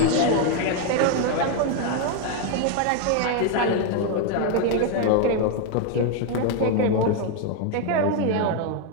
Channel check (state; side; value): different; both; correlation 0.01